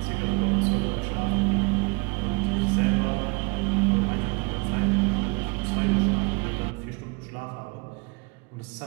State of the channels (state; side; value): quieter; left; 30.9 dB